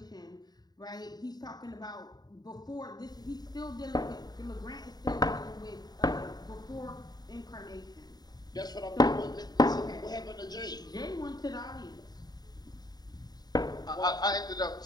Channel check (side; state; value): right; late; 0.20 ms